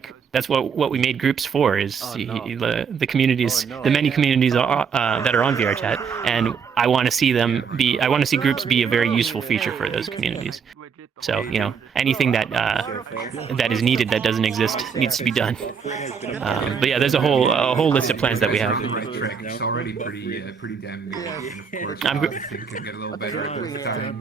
that's what we made groups for is the communities, the many communities that are on VRchat, and I want to see groups be a very useful feature for those communities. So anything that is needed that doesn't exist needs to be done. But yeah, there's a whole list of plans that we have. It's already pretty damn good, and of course I think can get a little better with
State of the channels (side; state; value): left; quieter; 6.4 dB